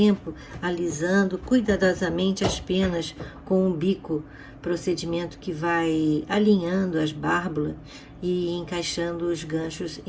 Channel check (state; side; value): identical; both; correlation 1.00